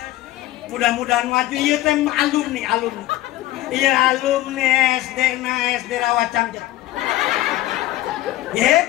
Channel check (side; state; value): right; quieter; 16.0 dB